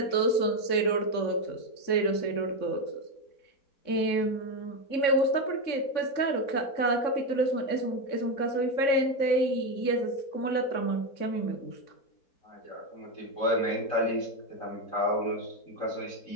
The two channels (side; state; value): right; late; 3.6 ms